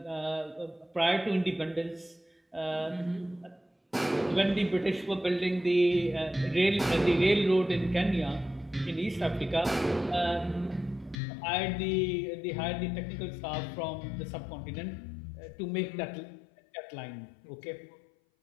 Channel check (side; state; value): right; drops out; at 11.2 s